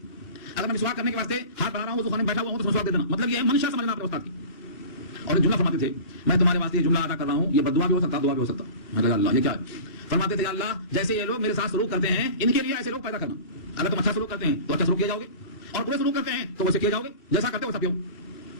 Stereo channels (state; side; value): late; right; 2.4 ms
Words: اگر میں مسواک کرنے کے واسطے ہاتھ بڑھا رہا ہوں تو خانے میں بیٹھا ہوا ہوں تو مسواک دے دینا. مطلب یہ ہے منشا سمجھنا اپنے استاد کی. اور جملہ فرماتے تھے میں تمہارے واسطے یہ جملہ ادا کر رہا ہوں، یہ بددعا بھی ہو سکتا، دعا بھی ہو سکتا. میں کہا اللہ یہ کیا ہے؟ فرماتے تھے اللہ جیسے یہ لوگ میرے ساتھ سلوک کرتے ہیں ان کے لیے ایسے لوگ پیدا کرنا. اگر تم اچھا سلوک کرتے ہیں تو اچھا سلوک کیا جاؤ گے، اور برے سلوک کرتے ہیں تو ویسے کیا جاؤ گے، جیسا کرتے ہو ویسا پیو.